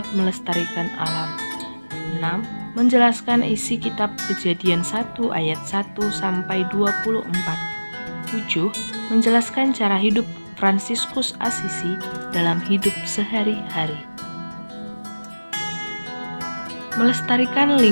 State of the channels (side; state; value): both; inverted; correlation -1.00